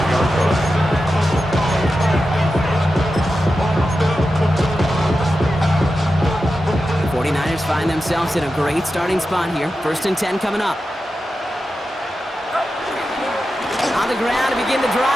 line. 49ers find themselves in a great starting spot here. First and 10 coming up. ground to begin the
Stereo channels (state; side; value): normal; both; correlation 0.91